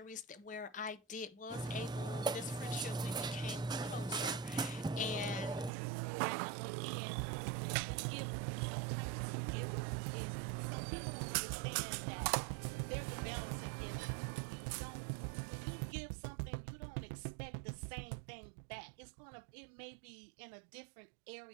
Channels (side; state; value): left; drops out; at 5.7 s